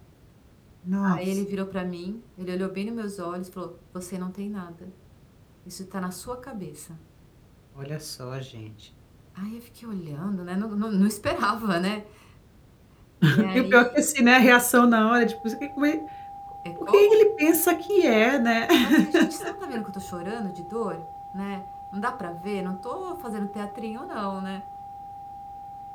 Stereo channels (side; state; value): both; identical; correlation 1.00